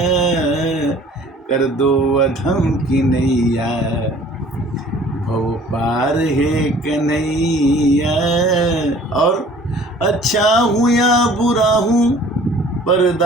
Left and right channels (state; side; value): normal; both; correlation 0.51